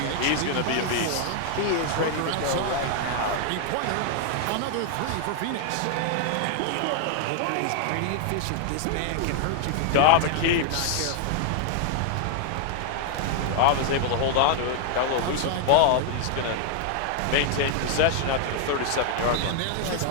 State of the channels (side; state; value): both; different; correlation 0.00